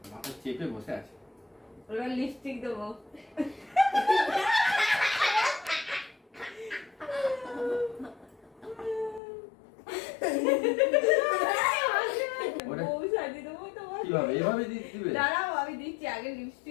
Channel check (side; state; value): right; drops out; at 9.2 s